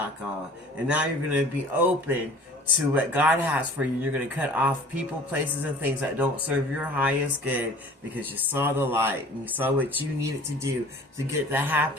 And now you're going to be open to what God has for you. You're going to cut off people, places, and things that don't serve your highest good because you saw the light and you saw what you needed to do to get the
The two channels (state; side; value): normal; both; correlation 0.47